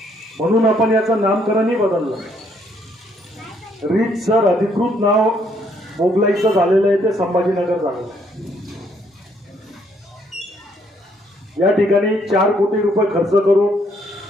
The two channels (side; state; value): both; normal; correlation 0.69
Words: म्हणून आपण याचं नामकरणही बदललं. रीतसर अधिकृत नाव मोगलाईचं झालेलं आहे ते संभाजीनगर झालेलं आहे. या ठिकाणी 4 कोटी रुपये खर्च करून